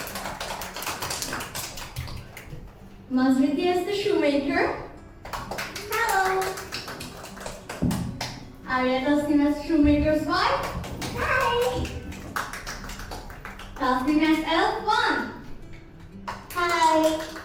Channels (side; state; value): both; identical; correlation 1.00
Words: Mazriti as the shoemaker. Hello. Arya Tasnim as shoemaker's wife. Hi. Tasnim as elf 1. Hi.